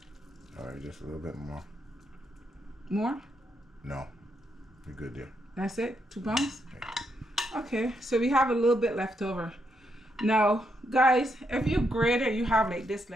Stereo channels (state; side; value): normal; both; correlation 0.79